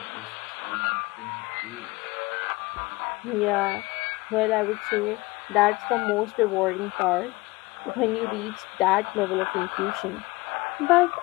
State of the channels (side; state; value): right; quieter; 22.2 dB